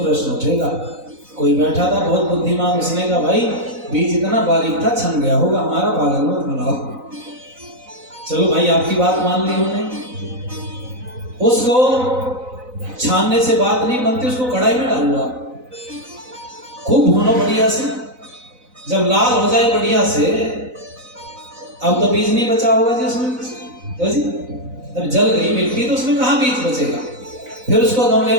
उठेगा। कोई बैठा था बहुत बुद्धिमान, उसने कहा भाई बीज इतना बारीक था छन गया होगा, हमारा पागल मत बनाओ। चलो भाई आपकी बात मान ली उन्होंने, उसको छानने से बात नहीं बनती, उसको कढ़ाई में डालो आप, खूब भूनो बढ़िया से। जब लाल हो जाए बढ़िया से, अब तो बीज नहीं बचा होगा जी उसमें, तो जी जब जल गई मिट्टी तो उसमें कहाँ बीज बचेगा। फिर उसको गमले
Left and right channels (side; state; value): left; late; 4.0 ms